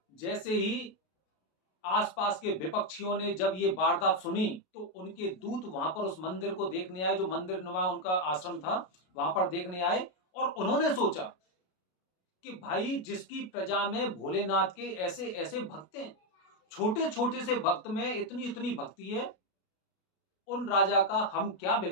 जैसे ही आसपास के विपक्षियों ने जब ये वारदात सुनी तो उनके दूत वहां पर उस मंदिर को देखने आए, जो मंदिर नुमा उनका आश्रम था, वहां पर देखने आए। और उन्होंने सोचा कि भाई, जिसकी प्रजा में भोलेनाथ के ऐसे ऐसे भक्त हैं, छोटे छोटे से भक्त में इतनी इतनी भक्ति है, उन राजा का हम क्या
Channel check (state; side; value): late; right; 33 ms